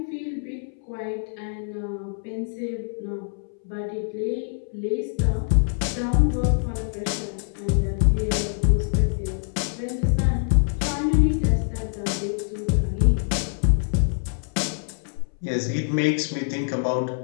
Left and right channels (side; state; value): right; silent; 61 dB below the other